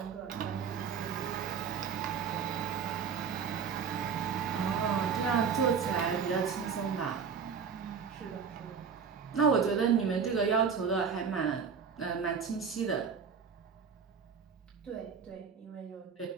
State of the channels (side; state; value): left; quieter; 6.4 dB